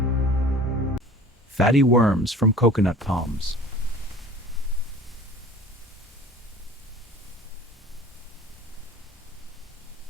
Fatty worms from coconut palms.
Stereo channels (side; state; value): both; normal; correlation 0.44